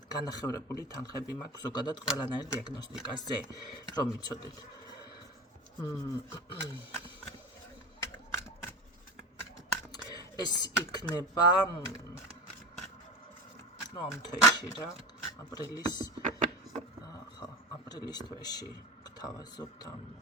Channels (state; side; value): normal; both; correlation 0.28